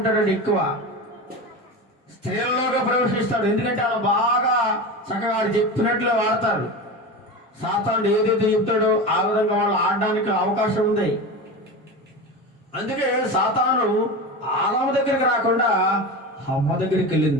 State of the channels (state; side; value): normal; both; correlation 0.26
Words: ఎక్కువ స్త్రీలలోగా ప్రవేశిస్తాడు. ఎందుకంటే వాళ్ళు బాగా చక్కగా చెప్పినట్లే వాడతారు. సాతానుడు ఏదైతే చెప్తాడో ఆ విధంగా వాళ్ళు ఆడడానికి అవకాశం ఉంది. అందుకే సాతాను ఆదాము దగ్గరికి రాకుండా హవ్వ దగ్గరికి